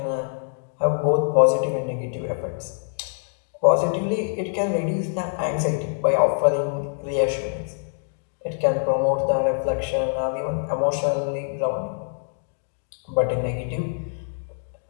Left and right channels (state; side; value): silent; right; digital silence